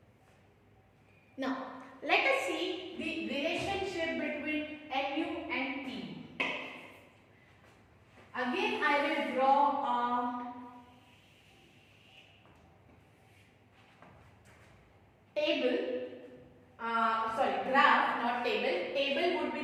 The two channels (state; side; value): identical; both; correlation 1.00